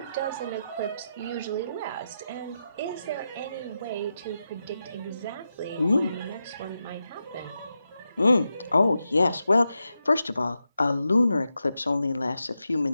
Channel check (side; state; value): both; inverted; correlation -0.88